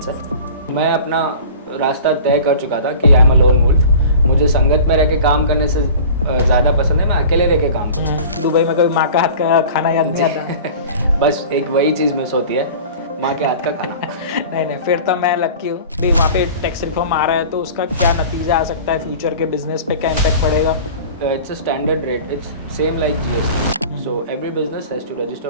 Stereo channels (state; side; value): inverted; both; correlation -0.40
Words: हैं। मैं अपना रास्ता तय कर चुका था कि I am a lone wolf. मुझे संगत में रह के काम करने से ज़्यादा पसंद है मैं अकेले रह के काम करूँ। दुबई में कभी माँ का हाथ का खाना याद नहीं आता? बस एक वही चीज़ मिस होती है, माँ के हाथ का खाना। नहीं, फिर तो मैं लकी हूँ भाई। वहाँ पे टैक्स रिफॉर्म आ रहा है, तो उसका क्या नतीजा आ सकता है, फ्यूचर के बिजनेस पे क्या इम्पैक्ट पड़ेगा? It's a standard rate. It's same like GST. So every business has to